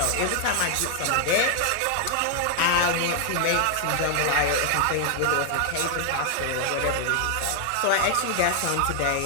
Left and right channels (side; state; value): both; different; correlation 0.00